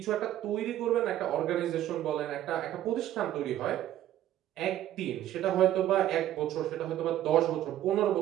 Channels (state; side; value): quieter; left; 12.5 dB